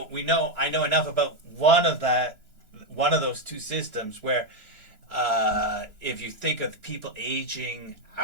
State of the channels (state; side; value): late; left; 3.0 ms